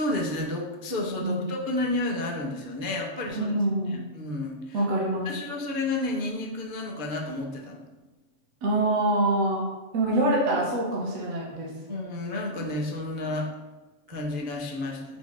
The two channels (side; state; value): left; late; 6.9 ms